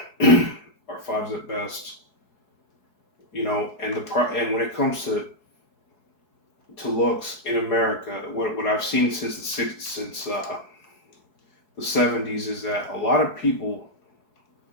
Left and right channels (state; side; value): late; right; 4.7 ms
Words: 5s at best. And when it comes to looks in America, what I've seen since the 70s is that a lot of people,